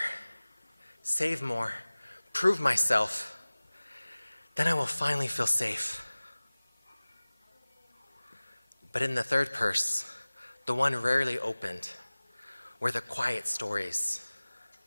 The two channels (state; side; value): inverted; both; correlation -1.00